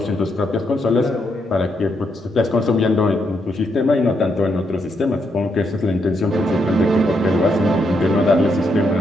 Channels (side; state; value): both; normal; correlation 0.78